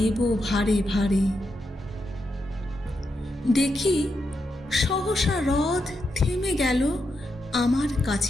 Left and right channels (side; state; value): both; normal; correlation 0.84